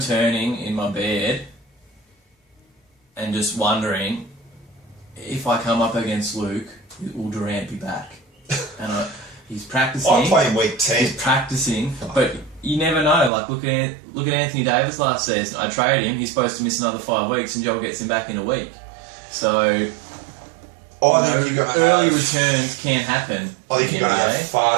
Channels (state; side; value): drops out; left; at 13.3 s